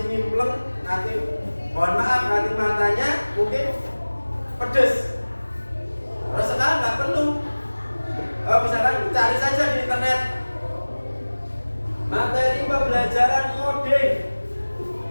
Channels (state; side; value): inverted; both; correlation -1.00